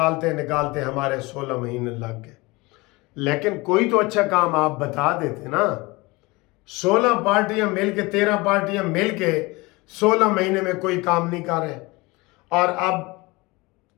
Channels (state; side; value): quieter; right; 23.5 dB